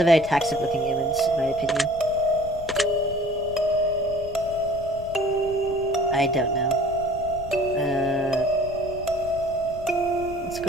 very toxic looking image, in my opinion. I don't know. Let's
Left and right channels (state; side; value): noise; left; rumble, 15 dB below the sound